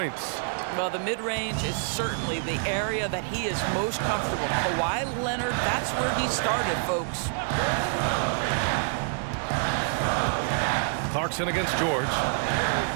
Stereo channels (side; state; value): left; silent; digital silence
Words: Well, the mid-range is certainly the area that he is most comfortable. Kawhi Leonard, that's where he started, folks. Clarkson against George.